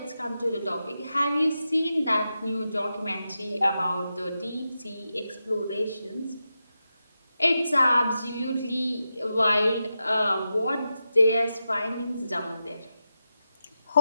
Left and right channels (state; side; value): inverted; both; correlation -0.89